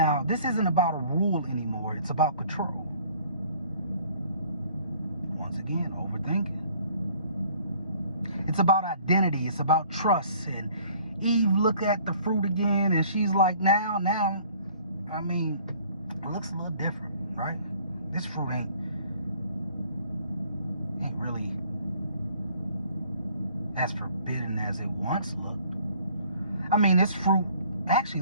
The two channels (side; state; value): both; inverted; correlation -0.55